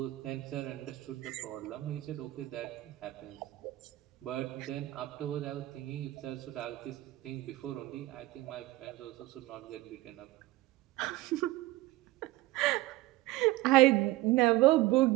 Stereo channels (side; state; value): left; quieter; 18.3 dB